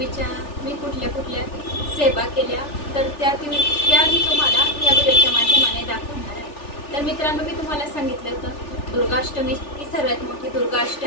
मी कुठल्या सेवा केल्या, तर त्या मी तुम्हाला या व्हिडिओच्या माध्यमाने दाखवणार आहे। तर मित्रांनो, मी तुम्हाला सांगितलं होतं दुर्गाष्टमी ही सर्वात मोठी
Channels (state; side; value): late; right; 3.4 ms